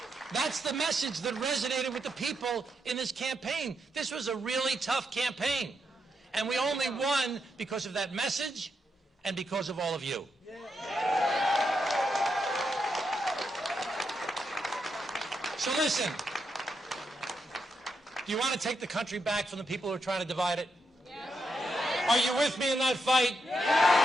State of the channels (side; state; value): both; normal; correlation 0.83